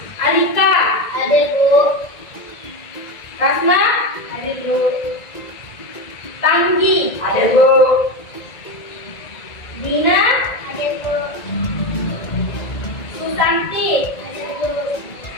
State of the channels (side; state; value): right; late; 1.9 ms